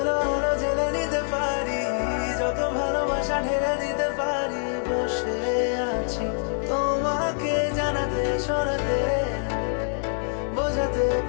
আলো জেলে নিতে পারি, যত ভালোবাসা ঢেলে দিতে পারি, বসে আছি তোমাকে জানাতে শোনাতে বোঝাতে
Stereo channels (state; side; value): silent; right; digital silence